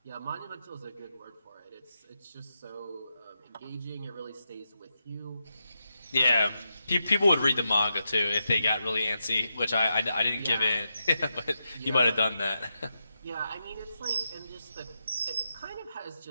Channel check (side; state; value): both; inverted; correlation -0.86